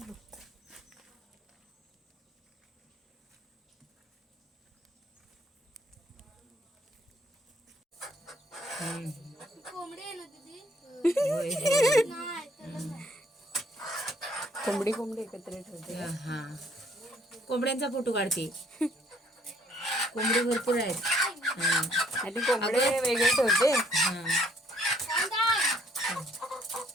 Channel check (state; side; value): normal; both; correlation 0.63